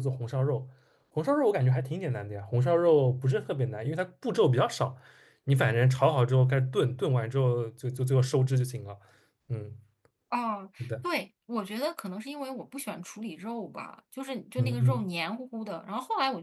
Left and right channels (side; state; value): both; identical; correlation 1.00